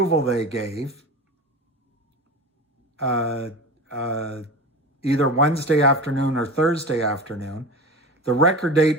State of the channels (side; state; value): both; normal; correlation 0.30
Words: they gave, either Wednesday afternoon or Thursday afternoon. The record